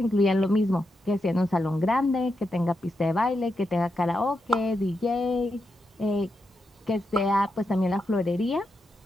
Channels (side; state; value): both; normal; correlation 0.85